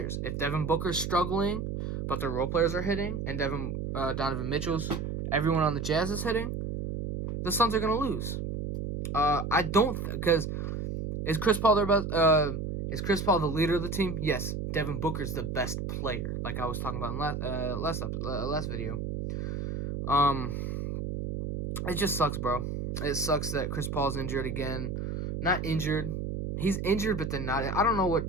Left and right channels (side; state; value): right; noise; hum, 4 dB below the sound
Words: If Devin Booker's struggling, but their role players are hitting, and Donovan Mitchell's, everyone on the Jazz is hitting, the Suns are gonna lose. I don't because is Chris Paul their best? Is Chris Paul the leader of the team? Yes. Devin Booker's the best player, like I was talking about in last video. It just sucks, bro. It sucks that Chris Paul's injured again. Not injured. He's injured, but then not. I don't know